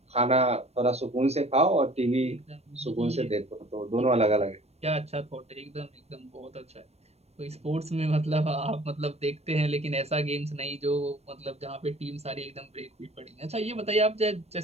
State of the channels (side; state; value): left; late; 0.31 ms